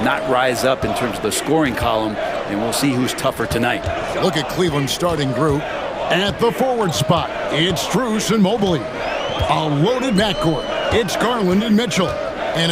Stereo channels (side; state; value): both; identical; correlation 1.00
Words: not rise up in terms of the scoring column, and we'll see who's tougher tonight. Look at Cleveland's starting group. At the forward spot, it's Strus and Mobley. A loaded backcourt. It's Garland and Mitchell. And